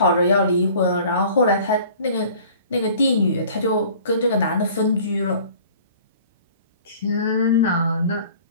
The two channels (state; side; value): inverted; both; correlation -0.48